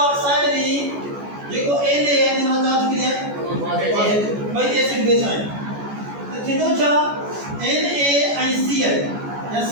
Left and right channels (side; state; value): left; late; 14 ms